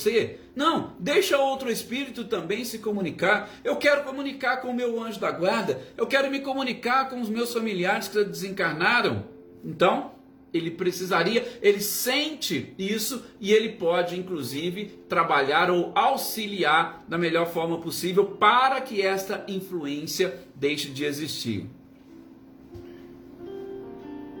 Não, deixa outro espírito também se comunicar. Eu quero comunicar com o meu anjo da guarda, eu quero me comunicar com os meus familiares que desencarnaram. Então, ele sente isso e ele pode, inclusive, trabalhar ou auxiliar da melhor forma possível para que esta influência deixe de existir.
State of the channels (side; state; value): both; identical; correlation 1.00